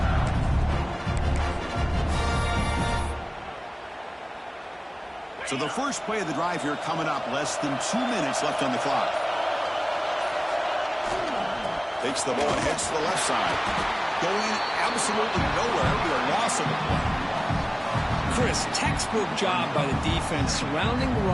So the first play of the drive here coming up. Less than 2 minutes left on the clock. Takes the ball and heads to the left side. Going absolutely nowhere. It'll be a loss of the play. Chris, textbook job by the defense surrounding the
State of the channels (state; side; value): identical; both; correlation 1.00